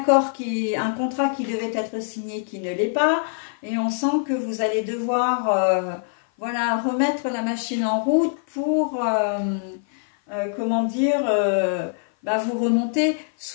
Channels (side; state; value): right; silent; 56 dB below the other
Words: contrat qui devait être signé qui ne l'est pas, et on sent que vous allez devoir voilà, remettre la machine en route pour, comment dire, bah vous remonter,